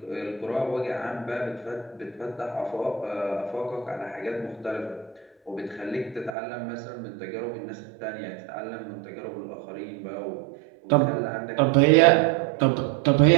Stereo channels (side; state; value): left; drops out; at 6.3 s